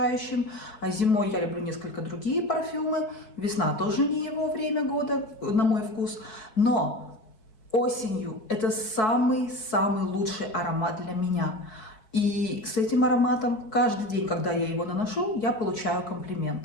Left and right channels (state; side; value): late; right; 4.6 ms